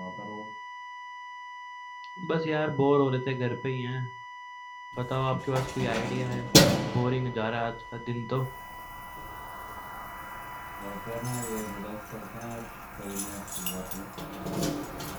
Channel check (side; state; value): both; identical; correlation 1.00